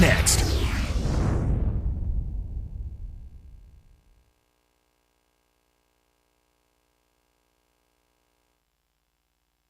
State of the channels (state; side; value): identical; both; correlation 1.00